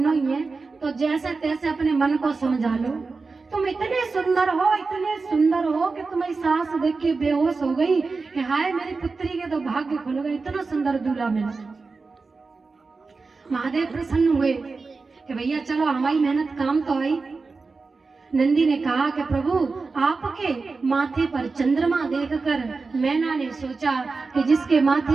ही है तो जैसे तैसे अपने मन को समझा लो। तुम इतने सुंदर हो कि तुम्हारी सास देख के बेहोश हो गई कि हाय मेरी पुत्री के तो भाग्य खुल गए, इतना सुंदर दूल्हा मिला। महादेव प्रसन्न हुए कि भैया चलो हमारी मेहनत काम तो आई। नंदी ने कहा कि प्रभु आपके माथे पर चंद्रमा देखकर मैना ने सोचा कि जिसके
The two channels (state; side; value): quieter; left; 4.2 dB